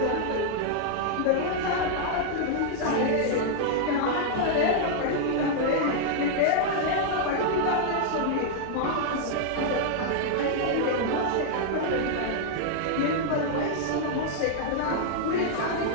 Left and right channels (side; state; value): both; different; correlation -0.01